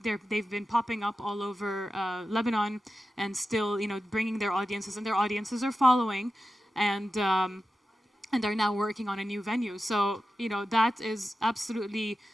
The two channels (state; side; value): normal; both; correlation 0.92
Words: been popping up all over Lebanon and still, bringing their audiences, and their audiences are following, and are now working on a new venue. So, that is absolutely